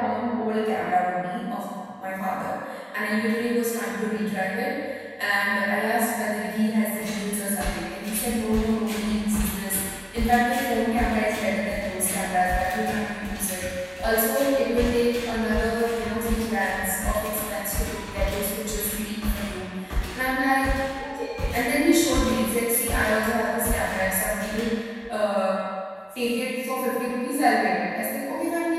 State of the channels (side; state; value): both; identical; correlation 1.00